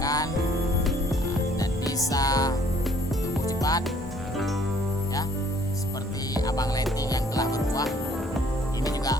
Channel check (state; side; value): normal; both; correlation 0.60